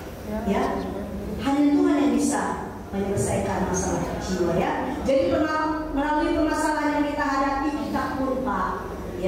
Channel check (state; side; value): identical; both; correlation 1.00